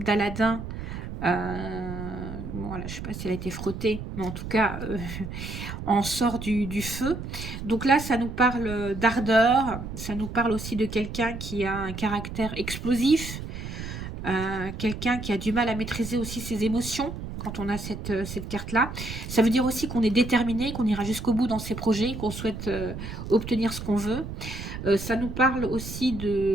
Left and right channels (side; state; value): right; noise; rumble, 8 dB below the sound